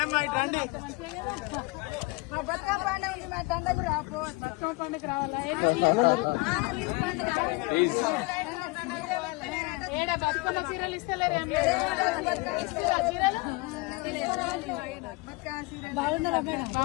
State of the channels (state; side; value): quieter; right; 24.9 dB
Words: పండుగ రావాలా ఏడా బతుకున్న చీరలు ఇస్తలేరు